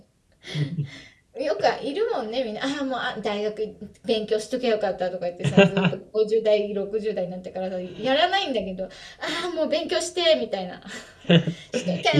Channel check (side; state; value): both; identical; correlation 1.00